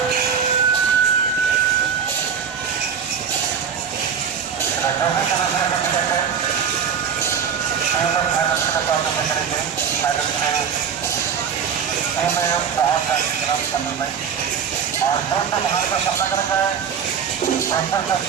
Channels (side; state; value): left; quieter; 7.3 dB